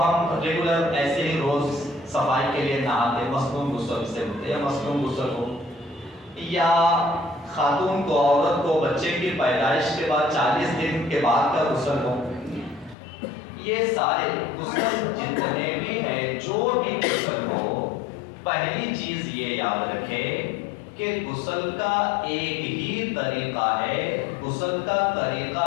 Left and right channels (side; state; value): right; drops out; at 13.0 s